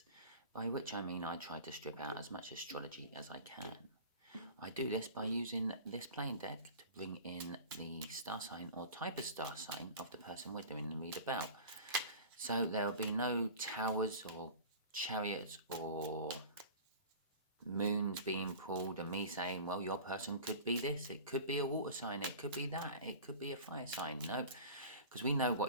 By which I mean I try to strip out as much astrology as I can. I do this by using this plain deck to bring in the star sign or type of star sign of the person we're doing the read about. So there will be no towers or chariots or moons being pulled and me saying, well, your person could be this, it could be a water sign, it could be that, it could be a fire sign. No, because we know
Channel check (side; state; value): both; inverted; correlation -0.37